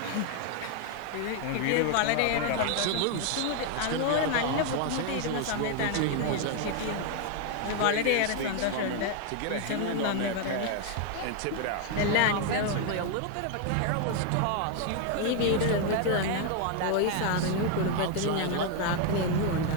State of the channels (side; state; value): both; different; correlation 0.01